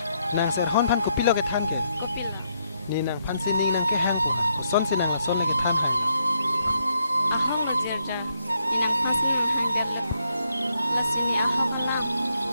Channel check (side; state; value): both; inverted; correlation -0.76